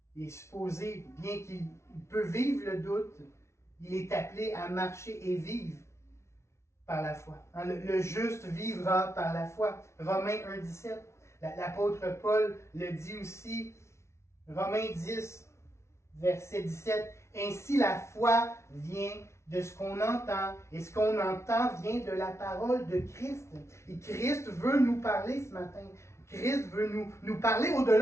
il est supposé, bien qu'il peut vivre le doute, il est appelé à marcher et vivre par la foi. Le juste vivra par la foi. Romains 1,17. L'apôtre Paul le dit aussi. Romains 10, verset 17. Ainsi la foi vient de ce qu'on entend, et ce qu'on entend vient de la parole de Christ. Et Christ veut nous parler ce matin. Christ veut nous parler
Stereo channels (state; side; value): late; right; 0.13 ms